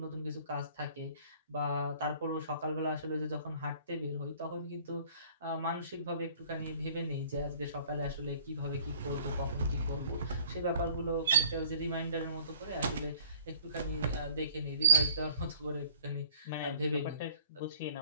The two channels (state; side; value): inverted; both; correlation -0.53